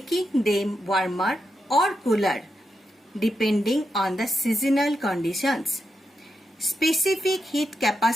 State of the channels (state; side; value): normal; both; correlation 0.85